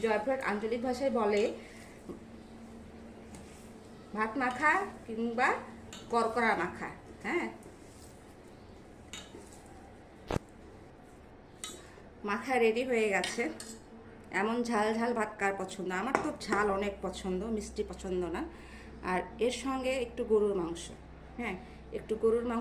জয়পুরহাট আঞ্চলিক ভাষায় বলে ভাত মাখা কিংবা করকরা মাখা। হ্যাঁ, মাখা রেডি হয়ে গেছে। এমন ঝাল ঝাল ভাত কার পছন্দ? আমার তো ঝাল অনেক পছন্দ, মিষ্টি পছন্দ না। আর এর সঙ্গে একটু গরুর মাংস। হ্যাঁ, একটু গরুর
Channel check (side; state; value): both; identical; correlation 1.00